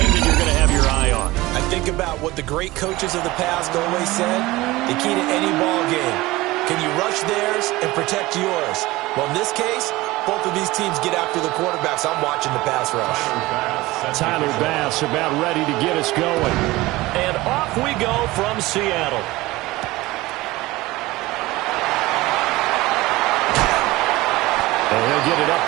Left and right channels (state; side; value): quieter; left; 19.6 dB